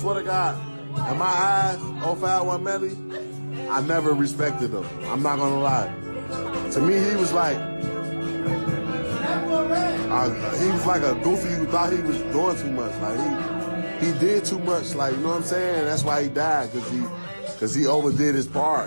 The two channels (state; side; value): inverted; both; correlation -1.00